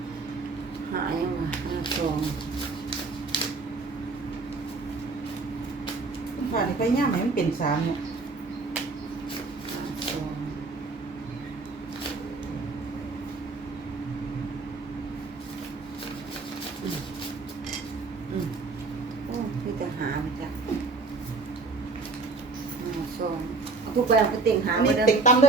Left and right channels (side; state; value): left; quieter; 3.9 dB